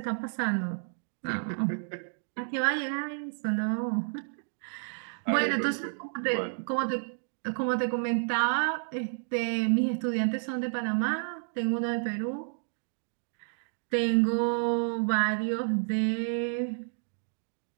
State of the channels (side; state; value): left; silent; digital silence